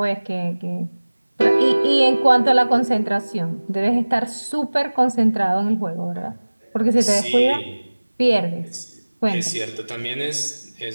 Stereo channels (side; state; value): both; inverted; correlation -1.00